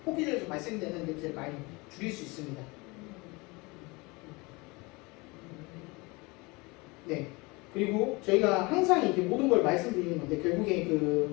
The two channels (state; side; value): quieter; right; 25.6 dB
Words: 뽑기에서 발생되는 냄새를 많이 줄일 수 있습니다. 네. 그리고 저희가 항상 이제 모든 걸 말씀드리는 건데 결국에